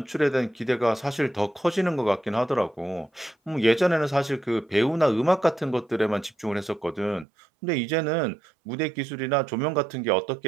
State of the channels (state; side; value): drops out; left; at 7.2 s